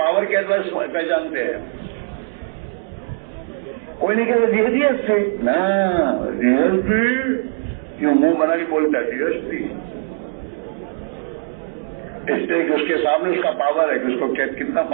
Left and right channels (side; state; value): left; silent; digital silence